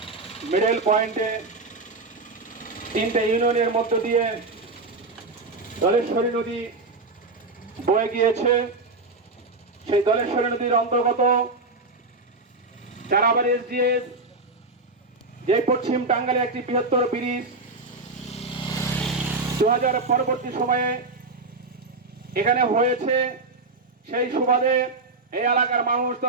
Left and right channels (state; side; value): quieter; left; 3.5 dB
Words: middle পয়েন্টে তিনটে ইউনিয়নের মধ্য দিয়ে দলেশ্বরী নদী বয়ে গিয়েছে। সেই দলেশ্বরী নদীর অন্তর্গত চারাবাড়ি এসডিএস যে পশ্চিম টাঙ্গাইলে একটি বৃহত্তর ব্রিজ 2000 পরবর্তী সময়ে এখানে হয়েছে। সেই সুবাদে এই এলাকার মানুষ